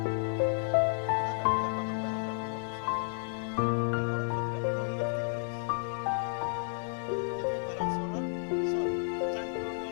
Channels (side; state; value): right; silent; digital silence